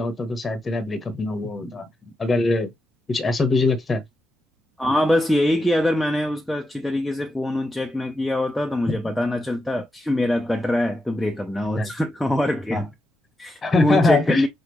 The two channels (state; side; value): normal; both; correlation 0.87